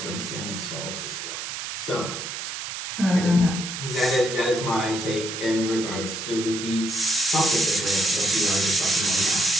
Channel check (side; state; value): right; noise; hiss, 6 dB below the sound